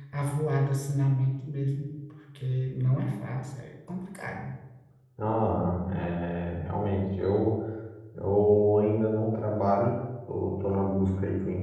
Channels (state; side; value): identical; both; correlation 1.00